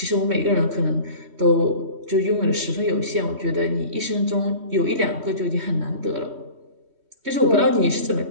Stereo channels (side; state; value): left; late; 3.1 ms